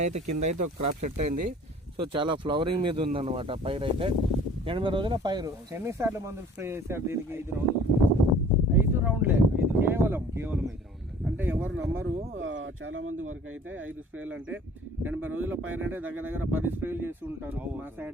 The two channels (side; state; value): both; normal; correlation 0.49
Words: అయితే కింద అయితే ఒక క్రాప్ సెట్ అయింది. సో చాలా ఫ్లవరింగ్ మీద ఉందన్నమాట పైరు అయితే. 80 రోజుల పైరు. ఎన్నిసార్లు మందులు స్ప్రే చేశారు దీనికి? 5 రౌండ్లే కేవలం 5 రౌండ్లు. అంటే ఎవరు నమ్మరు, చాలా మంది వరకు అయితే 5 స్ప్రేలు అంటే 80 రోజుల పైరు అంటే దగ్గర 10 స్ప్రేలు చేసి ఉంటారు. మా